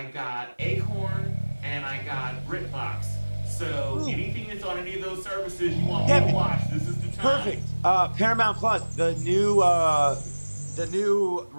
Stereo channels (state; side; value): inverted; both; correlation -1.00